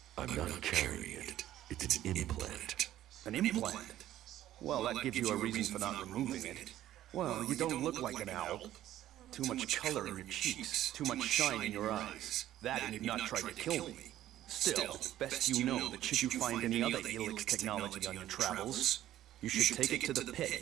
I'm not carrying it. It's an implant. An implant? Well, that gives you a reason for not removing it. Well, you don't look like an owl. Too much color in your cheeks, too much shine in your eyes. That and you've not tried to kill me. Still, best you know that should you find any other Elix technology on your travels, you should take it to the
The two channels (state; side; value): quieter; left; 13.1 dB